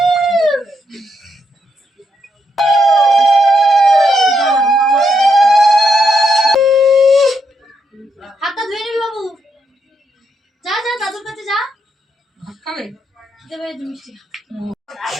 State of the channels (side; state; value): both; normal; correlation 0.79